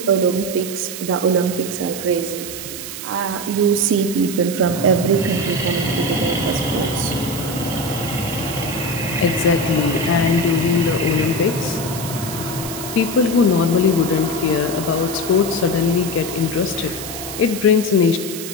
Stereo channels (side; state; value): right; noise; hiss, 9 dB below the sound